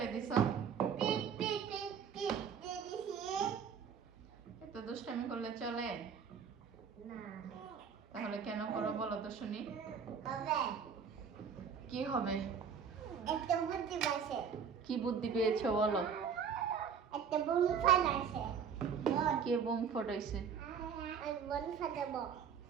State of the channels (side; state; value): left; quieter; 6.8 dB